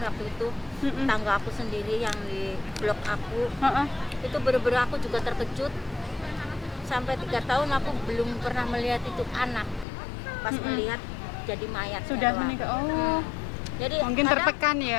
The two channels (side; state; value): right; drops out; at 9.9 s